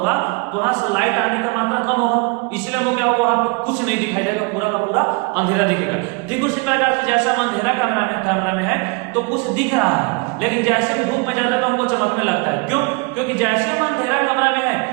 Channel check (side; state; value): left; quieter; 29.8 dB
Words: तो वहां से लाइट आने का मात्रा कम होगा, इसलिए वो क्या होगा, वहां पे कुछ नहीं दिखाई देगा, पूरा का पूरा अंधेरा दिखेगा। ठीक उसी प्रकार से जैसे हम अंधेरा कमरा में है तो कुछ दिख रहा है, लेकिन जैसे हम धूप में जाते हैं तो हमको चमकने लगता है। क्यों, क्योंकि जैसे हम अंधेरा कमरा में है